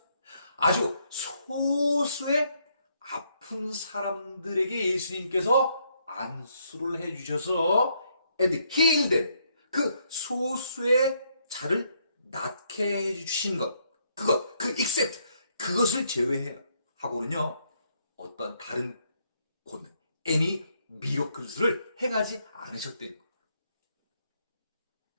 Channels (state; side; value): inverted; both; correlation -0.73